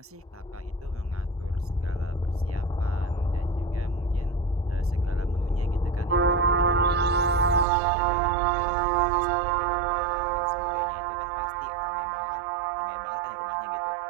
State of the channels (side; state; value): left; drops out; at 7.7 s